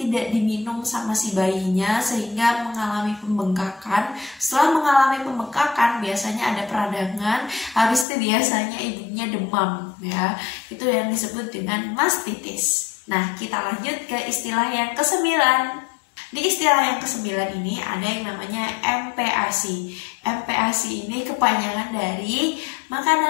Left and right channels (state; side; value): drops out; right; at 8.1 s